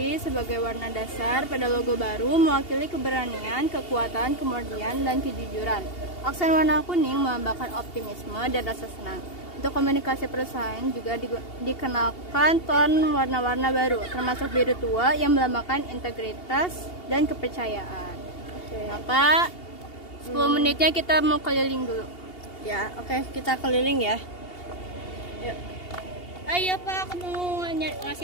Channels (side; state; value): right; late; 2.8 ms